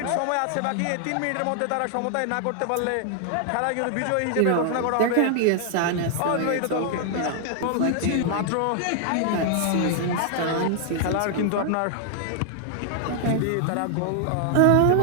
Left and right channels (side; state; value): both; different; correlation 0.00